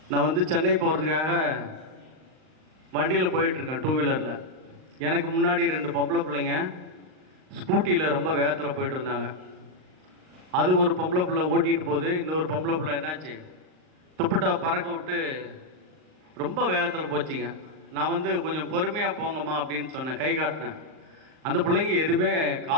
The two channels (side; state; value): left; late; 38 ms